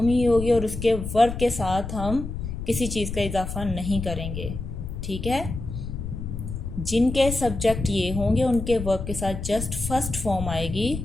ही होगी और उसके वर्ब के साथ हम किसी चीज़ का इजाफा नहीं करेंगे। ठीक है, जिनके सब्जेक्ट ये होंगे उनके वर्ब के साथ जस्ट फर्स्ट फॉर्म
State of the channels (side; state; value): left; noise; rumble, 6 dB below the sound